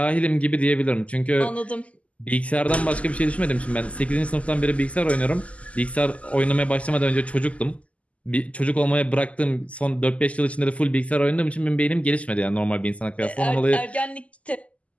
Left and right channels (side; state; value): right; late; 0.066 ms